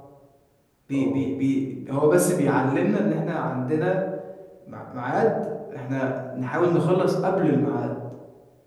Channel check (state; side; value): identical; both; correlation 1.00